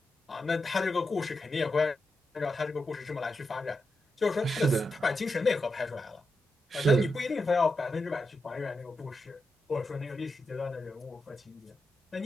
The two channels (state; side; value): normal; both; correlation 0.87